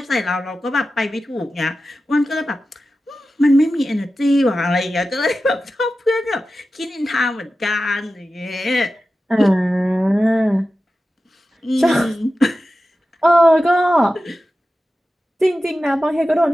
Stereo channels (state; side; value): normal; both; correlation 0.93